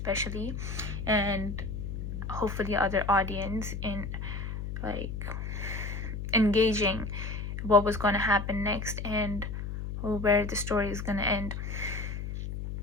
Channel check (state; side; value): noise; left; hum, 5 dB below the sound